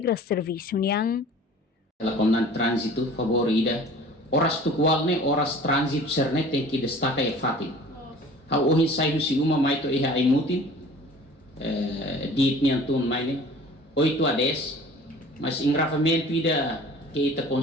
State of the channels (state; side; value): normal; both; correlation 0.45